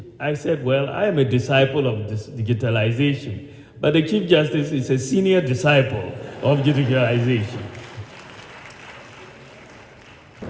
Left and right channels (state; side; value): identical; both; correlation 1.00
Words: I said, well, I am a disciple of this digitalization, but the Chief Justice is a senior disciple of digitalization.